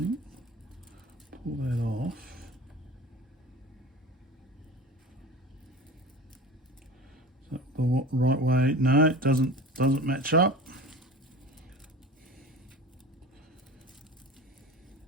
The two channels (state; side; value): normal; both; correlation 0.35